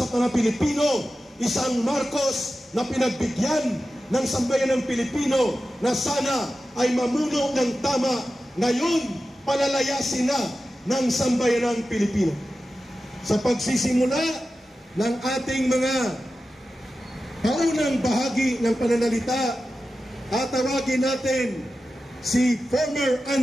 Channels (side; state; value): both; normal; correlation 0.93